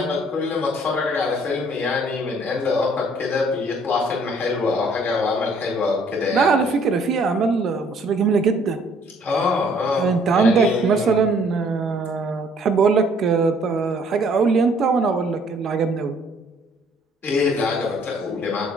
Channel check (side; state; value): both; normal; correlation 0.60